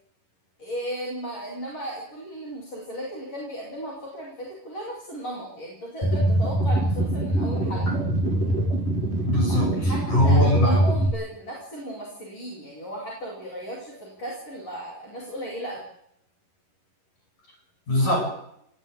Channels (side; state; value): right; late; 11 ms